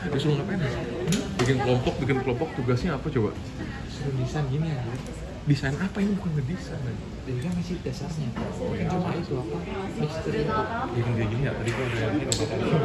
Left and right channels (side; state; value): both; identical; correlation 1.00